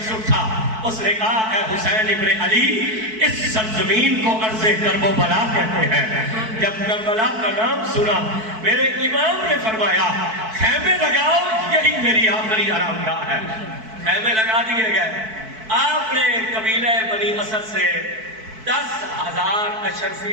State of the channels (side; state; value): left; late; 4.6 ms